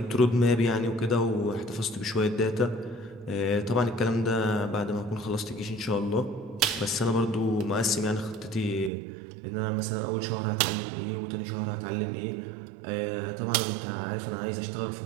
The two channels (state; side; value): drops out; left; at 8.9 s